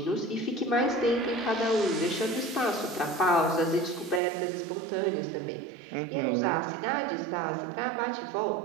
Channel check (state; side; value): drops out; left; at 4.2 s